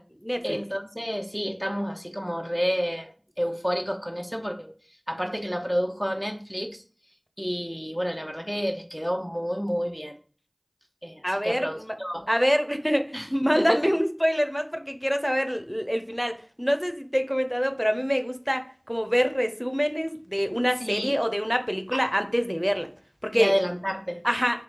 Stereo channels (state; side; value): identical; both; correlation 1.00